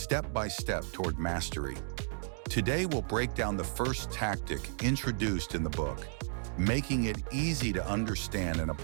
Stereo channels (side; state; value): left; silent; digital silence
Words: by step toward mastery. Today, we'll break down the first tactic introduced in the book, making it easy to understand and